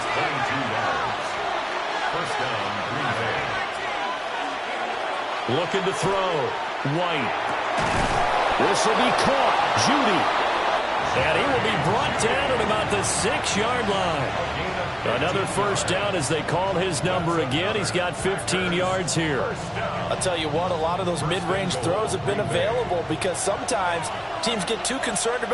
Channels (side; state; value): both; identical; correlation 1.00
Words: Looking to throw. White. This will be caught. Judy. And he will be brought down at about the 6-yard line. Another first down as they call his number again. He's got 15 yards here. I'll tell you what, a lot of those mid-range throws have been available because sometimes teams get too concerned